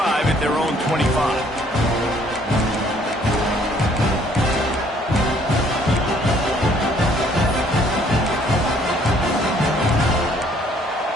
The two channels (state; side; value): normal; both; correlation 0.62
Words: at their own 25.